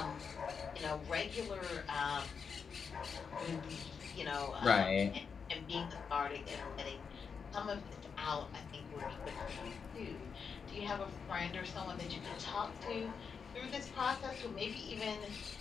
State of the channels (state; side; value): quieter; right; 6.0 dB